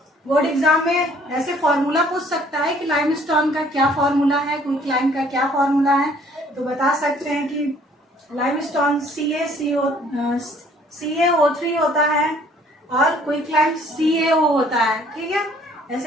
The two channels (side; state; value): both; normal; correlation 0.59